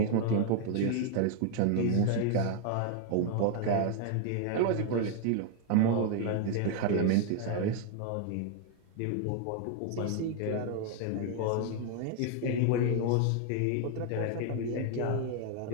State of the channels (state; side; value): different; both; correlation 0.00